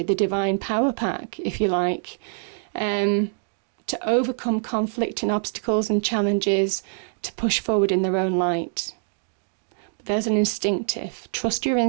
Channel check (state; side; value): silent; left; 62 dB below the other